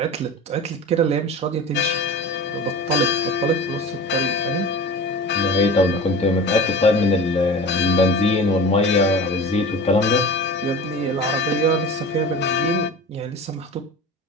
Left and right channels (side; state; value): both; normal; correlation 0.35